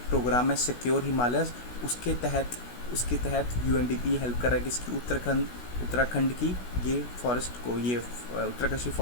प्रोग्राम है सिक्योर हिमालयस, उसके तहत UNDP हेल्प कर रहा है किसकी? उत्तराखंड की ये फॉरेस्ट को, ये उत्तरकाशी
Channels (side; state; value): right; late; 16 ms